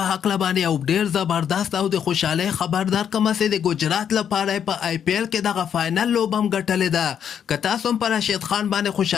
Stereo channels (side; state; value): right; quieter; 8.5 dB